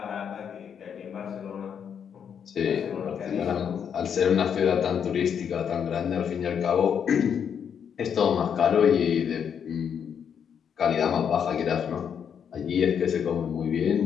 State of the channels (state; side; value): quieter; right; 7.8 dB